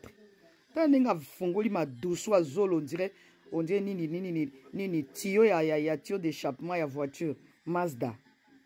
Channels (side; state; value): both; identical; correlation 1.00